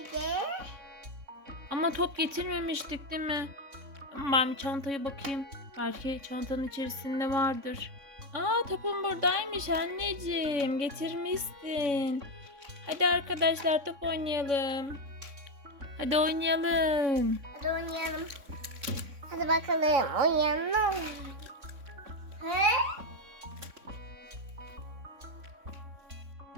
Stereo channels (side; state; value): left; late; 3.6 ms